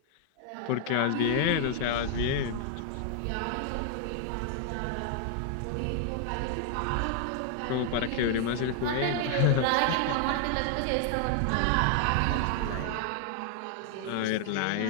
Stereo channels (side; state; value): both; different; correlation 0.00